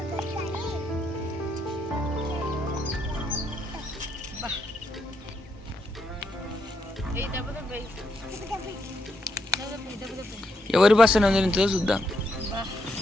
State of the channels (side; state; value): both; normal; correlation 0.79